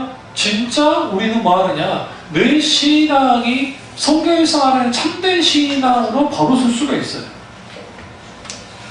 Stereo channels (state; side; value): identical; both; correlation 1.00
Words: 진짜 우리는 뭐 하느냐? 내 신앙이 성경에서 말하는 참된 신앙으로 바로 설 수가 있어요.